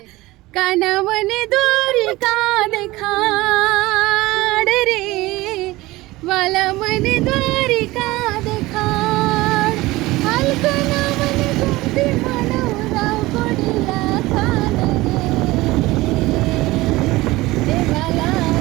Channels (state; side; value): quieter; left; 19.5 dB